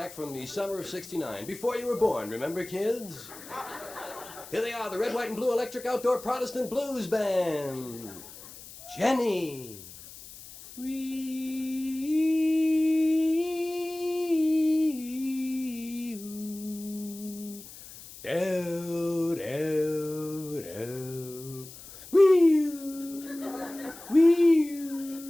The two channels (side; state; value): left; noise; hiss, 16 dB below the sound